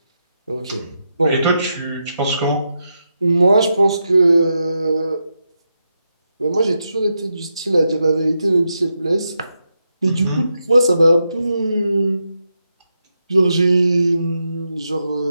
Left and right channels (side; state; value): both; inverted; correlation -0.85